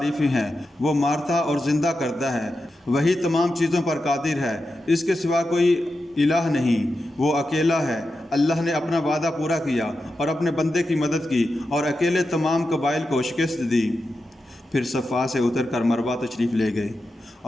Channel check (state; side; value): normal; both; correlation 0.90